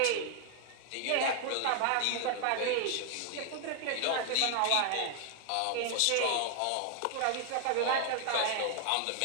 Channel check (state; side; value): different; both; correlation 0.00